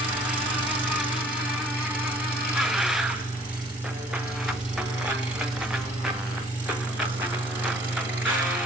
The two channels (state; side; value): normal; both; correlation 0.56